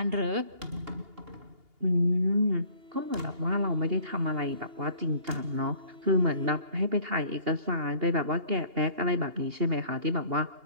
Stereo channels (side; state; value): left; late; 2.8 ms